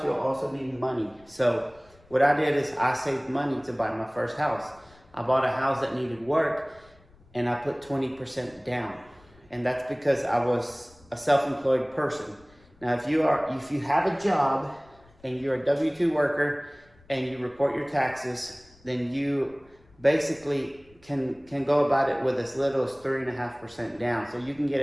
you'll also need money. So what I did is I saved money to buy my first house. I bought a house that needed work, and I put 20% down. And that's because I was a self-employed person. Now, if you have a job and you're a W-2 worker and you report your taxes, then you basically can go about it with as little as 3.5% down. So you can get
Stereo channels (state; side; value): noise; left; rumble, 28 dB below the sound